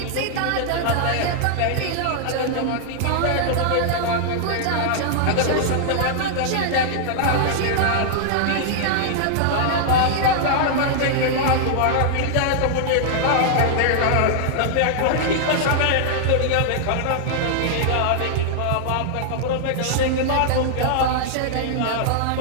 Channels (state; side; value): different; both; correlation -0.01